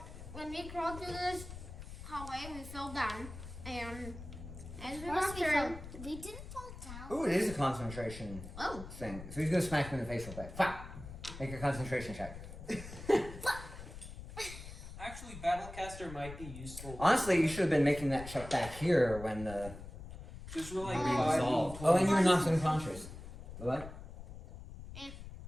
when we crawled through this hallway, we fell down, and as we walked through, We didn't fall down. Ooh, it is a concentration oh, thing. So he's gonna smack me in the face real quick. Fire! Make a concentration check. Actually, Battlecaster might be useful. Honestly, you should have been making that check back here when the Just roll like being 5 dissolved. d20s. Oh, and you were knocked unconscious. What? and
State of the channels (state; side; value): noise; left; rumble, 12 dB below the sound